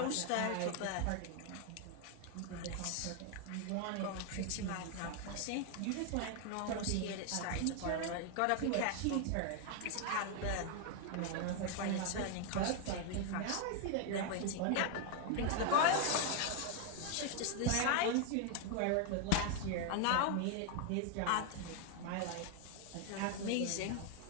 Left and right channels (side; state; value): both; different; correlation 0.01